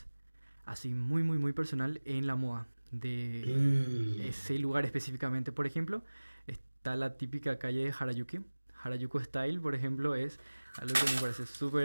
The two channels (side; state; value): both; inverted; correlation -1.00